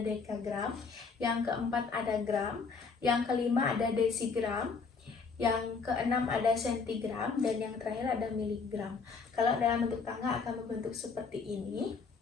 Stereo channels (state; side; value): quieter; right; 5.0 dB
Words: dekagram, yang keempat ada gram, yang kelima ada desigram, yang keenam ada sentigram, dan yang terakhir ada miligram. Kalau dalam bentuk tangga akan membentuk seperti ini.